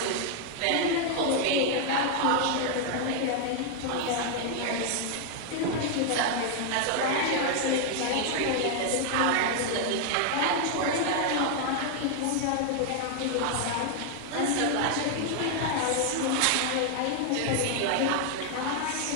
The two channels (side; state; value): both; different; correlation 0.00